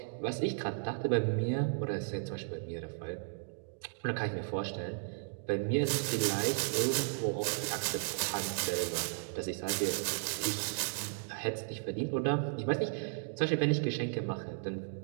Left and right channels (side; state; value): left; silent; digital silence